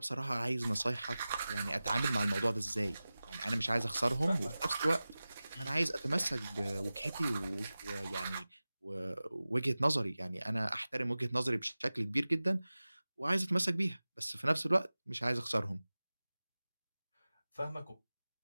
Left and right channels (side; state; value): both; inverted; correlation -0.97